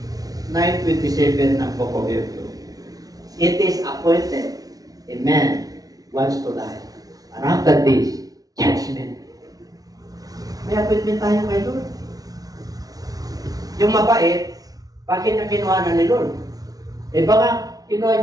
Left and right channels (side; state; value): left; late; 0.18 ms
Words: 9:27 ng Book of Hebrews. It is appointed a man wants to die. And after this, judgment. May appointment tayo kay Lord. Yung mabait, bakit niya kinuha na ni Lord? Baka